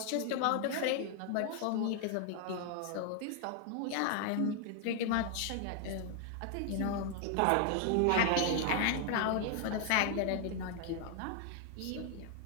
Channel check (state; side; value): different; both; correlation 0.00